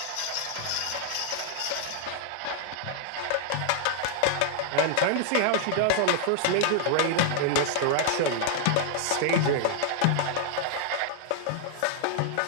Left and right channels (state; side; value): different; both; correlation -0.01